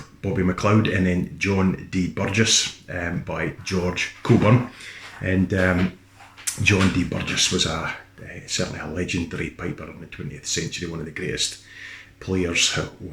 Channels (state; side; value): identical; both; correlation 1.00